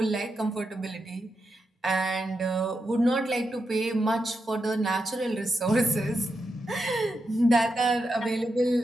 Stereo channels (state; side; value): normal; both; correlation 0.86